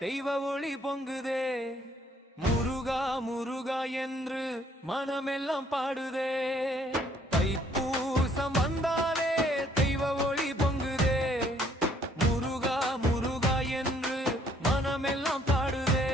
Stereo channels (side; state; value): both; normal; correlation 0.64